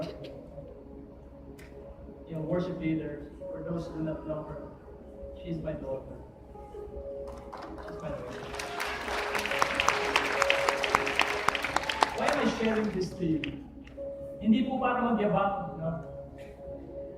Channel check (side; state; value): both; identical; correlation 1.00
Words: yung worship leader, for those who do not know her, she's my daughter. She's my daughter. Why am I sharing this to you? Hindi po para magyabang, no?